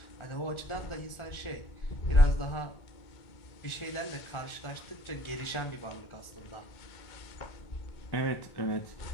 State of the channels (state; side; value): late; right; 1.4 ms